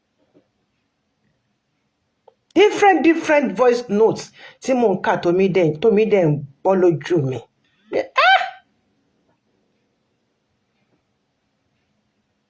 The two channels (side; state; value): both; identical; correlation 1.00